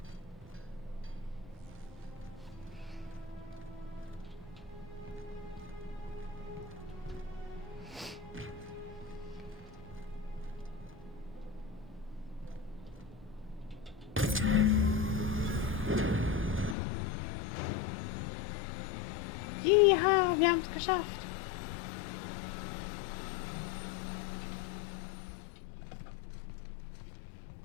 Ja, wir haben es geschafft.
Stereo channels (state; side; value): drops out; right; at 16.8 s